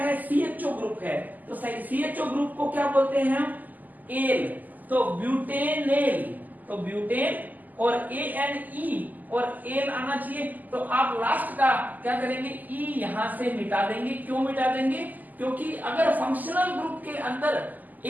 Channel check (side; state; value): left; late; 0.083 ms